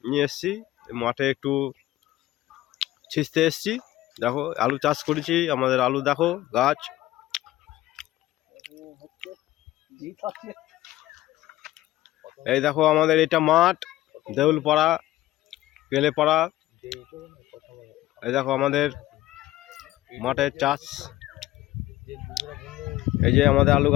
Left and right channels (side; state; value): right; quieter; 15.9 dB